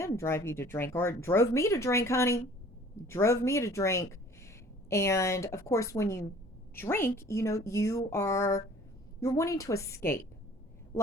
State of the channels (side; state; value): both; normal; correlation 0.51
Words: drive you to drink, or drove me to drink, honey. Drove me to drink. And of course, when you drink, you're wanting to escape.